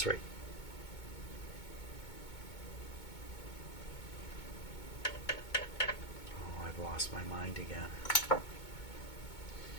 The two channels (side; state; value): right; late; 2.2 ms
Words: right. Oh, I've lost my mind again.